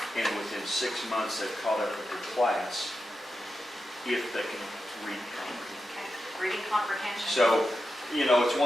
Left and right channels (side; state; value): both; normal; correlation 0.89